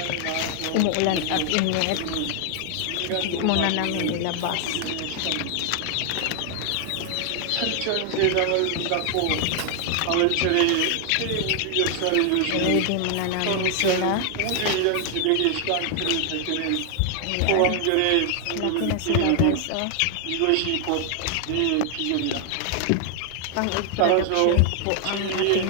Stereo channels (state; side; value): different; both; correlation 0.00